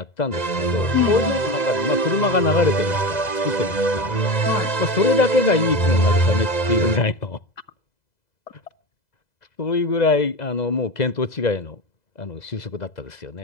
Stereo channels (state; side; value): late; right; 2.0 ms